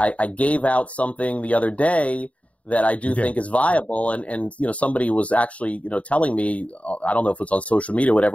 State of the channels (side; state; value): right; late; 0.066 ms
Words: gave out something the other day that I do think is viable. And somebody was actually, telling me, I don't know if it's on social media or